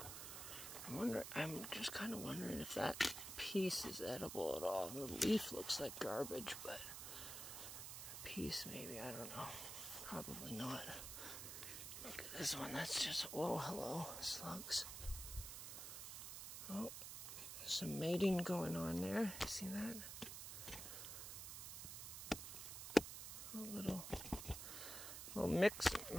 I'm just kind of wondering if that piece is edible at all. The leaf looks like garbage, but the piece maybe, I don't know. Probably not. Look at this one, that's just, whoa, hello, slugs. Oh, some mating going on there. See that? A little mix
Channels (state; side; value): noise; right; hiss, 7 dB below the sound